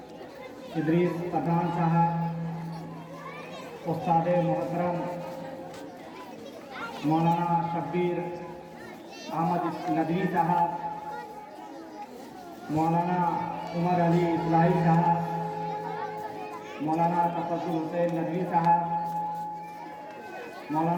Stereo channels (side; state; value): both; identical; correlation 1.00